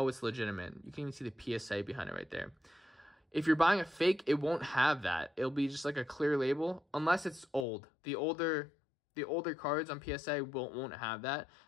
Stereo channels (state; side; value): drops out; right; at 7.7 s